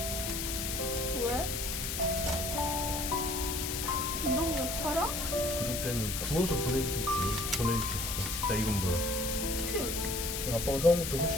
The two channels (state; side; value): noise; left; hiss, 3 dB below the sound